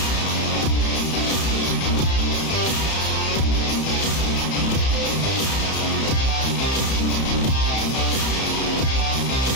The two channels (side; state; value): right; late; 31 ms